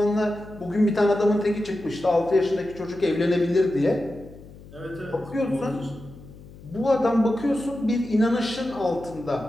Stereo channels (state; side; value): noise; left; hum, 19 dB below the sound